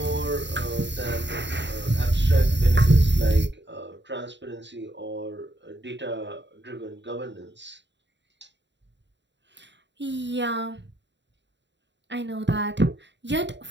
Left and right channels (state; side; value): late; left; 0.52 ms